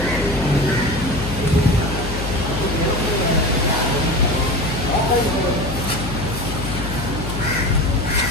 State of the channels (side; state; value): left; noise; hum, 6 dB below the sound